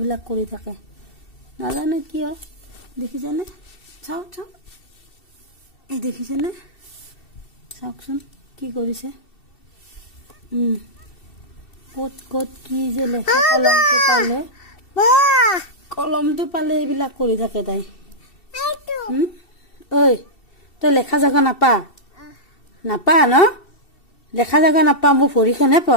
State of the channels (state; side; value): late; right; 2.7 ms